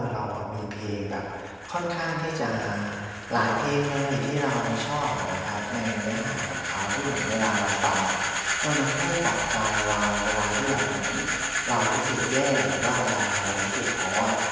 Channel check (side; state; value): both; identical; correlation 1.00